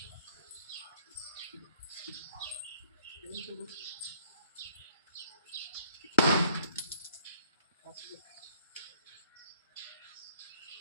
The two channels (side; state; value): both; inverted; correlation -0.64